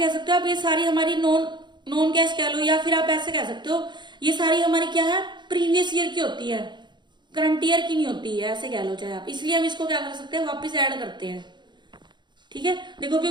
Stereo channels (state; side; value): late; left; 0.22 ms